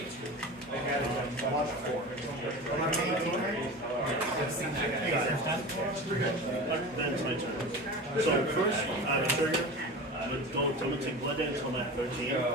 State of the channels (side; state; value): both; normal; correlation 0.31